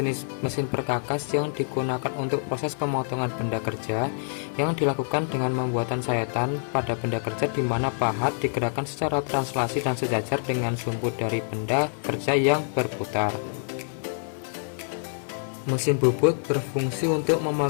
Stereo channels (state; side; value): silent; right; digital silence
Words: mesin perkakas yang digunakan untuk proses pemotongan benda kerja yang dilakukan dengan pembuatan sayatan pada benda kerja, di mana pahat digerakkan secara translasi dan sejajar dengan sumbu dari benda kerja yang berputar. Mesin bubut berfungsi untuk